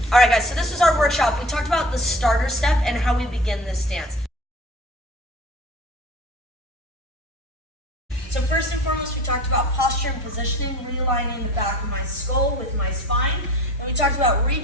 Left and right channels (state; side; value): normal; both; correlation 0.41